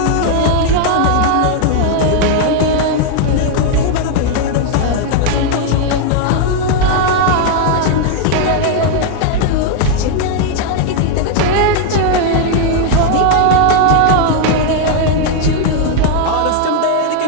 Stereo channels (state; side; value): different; both; correlation 0.00